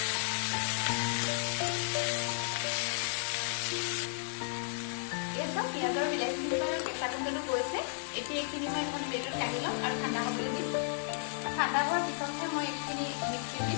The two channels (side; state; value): right; silent; digital silence